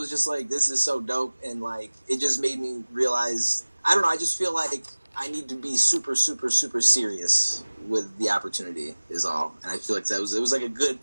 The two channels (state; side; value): inverted; both; correlation -1.00